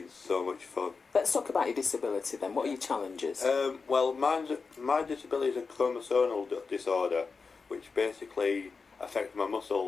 so much fun. Let's talk about your disability then. What are your challenges? Well, my disability is a chromosomal disorder, which basically affects my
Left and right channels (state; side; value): quieter; right; 4.8 dB